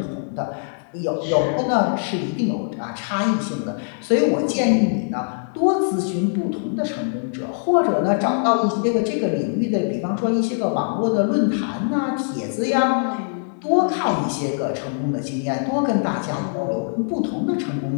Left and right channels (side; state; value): right; silent; digital silence